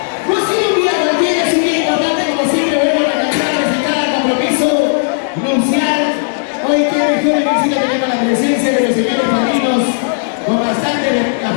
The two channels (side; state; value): right; silent; digital silence